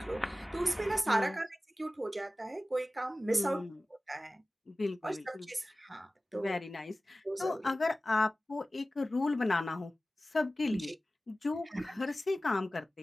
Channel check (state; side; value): normal; both; correlation 0.96